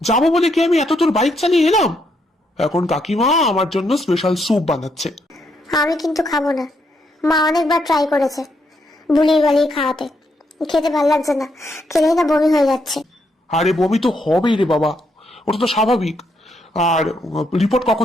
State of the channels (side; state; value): both; normal; correlation 0.77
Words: যাবো বলে কি আমি এত তোর বাইক চালিয়ে এলাম? এখন কাকিমা আমার জন্য স্পেশাল স্যুপ বানাচ্ছে। আমি কিন্তু খাবো না, মা অনেকবার ট্রাই করেছে বুলিয়ে বালিয়ে খাওয়াতে, খেতে ভাল লাগছে না, খেলেই না বমি হয়ে যাচ্ছে। আরে বমি তো হবেই রে বাবা, ওটা তো স্বাভাবিক। আর রিপোর্ট